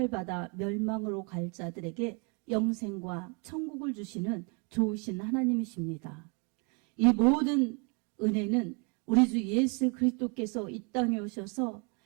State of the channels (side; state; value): left; quieter; 34.4 dB